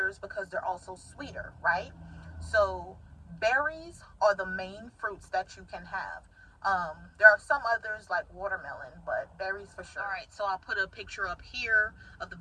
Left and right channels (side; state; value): both; identical; correlation 1.00